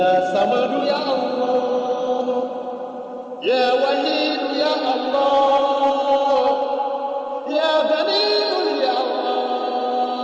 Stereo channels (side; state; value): both; identical; correlation 1.00